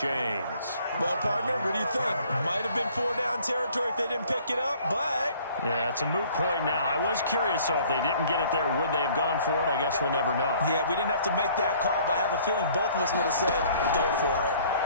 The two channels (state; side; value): inverted; both; correlation -0.56